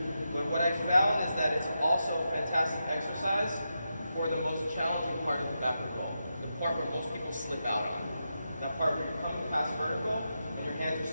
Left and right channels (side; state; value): both; inverted; correlation -0.87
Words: But what I found is that it's also a fantastic exercise for the most challenging part of the backward roll. The part where most people slip out on. That part where you're coming past vertical and your hands are